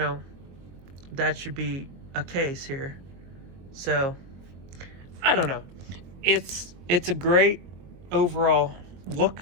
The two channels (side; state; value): left; late; 22 ms